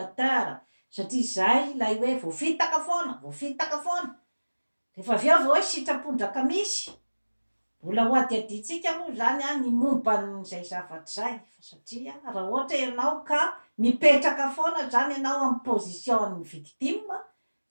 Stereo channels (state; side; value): inverted; both; correlation -1.00